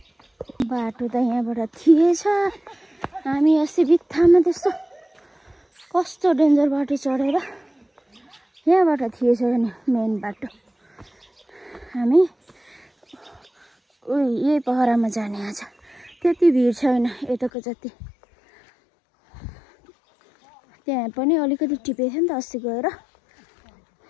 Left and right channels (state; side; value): drops out; right; at 17.5 s